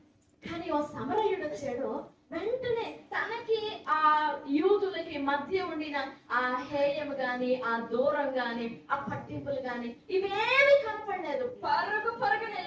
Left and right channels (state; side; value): identical; both; correlation 1.00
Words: కానీ ఓ సమరయుడు వచ్చాడు. వెంటనే తనకి ఆ యూదులకి మధ్య ఉండిన ఆ హేయం గాని, ఆ దూరం గాని, ఆ పట్టింపులు గాని ఇవేమి కనపడలేదు. పరుగున